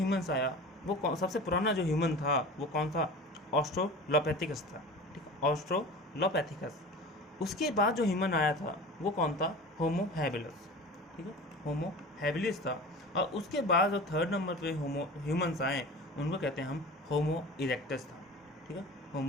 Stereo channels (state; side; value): normal; both; correlation 0.36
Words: आया, वो सबसे पुराना जो ह्यूमन था वो कौन था, ऑस्ट्रोलोपैथिकस था। ठीक है, ऑस्ट्रोलोपैथिकस। उसके बाद जो ह्यूमन आया था वो कौन था, होमो हैबिलिस। ठीक है, होमो हैबिलिस था। और उसके बाद जो 3rd नंबर पे ह्यूमंस आए, उनको कहते हैं हम होमो इरेक्टस था। ठीक है,